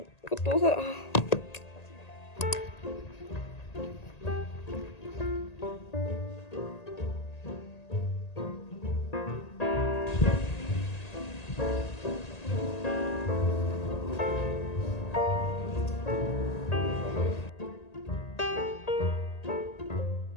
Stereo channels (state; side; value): late; right; 1.8 ms